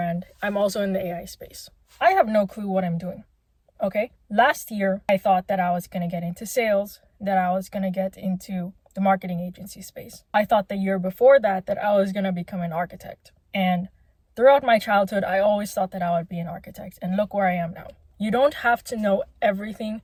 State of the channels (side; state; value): both; identical; correlation 1.00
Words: I'm also in the AI space. I have no clue what I'm doing. Okay? Last year, I thought that I was going to get into sales, that I was going to get into the marketing agency space. I thought the year before that I was going to become an architect. And throughout my childhood, I always thought that I would be an architect. And look where I am now. You don't have to know everything